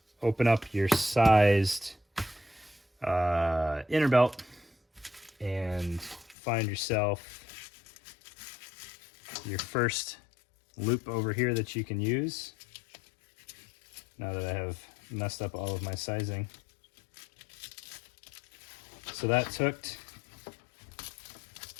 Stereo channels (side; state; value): right; drops out; at 6.4 s